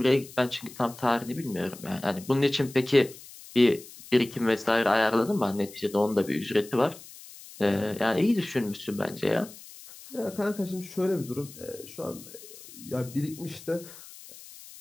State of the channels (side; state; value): left; noise; hiss, 18 dB below the sound